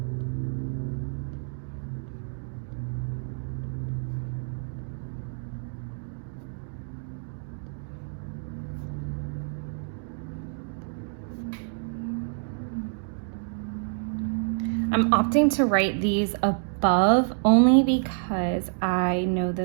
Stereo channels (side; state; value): left; silent; digital silence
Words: I'm opting to write these above only because I know